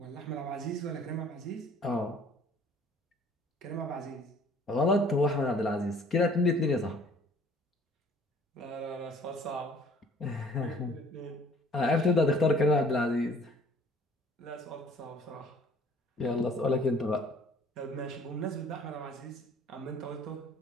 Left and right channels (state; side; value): normal; both; correlation 0.54